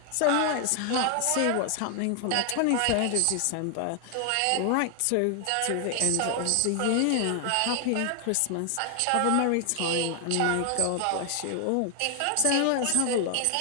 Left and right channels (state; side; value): different; both; correlation 0.00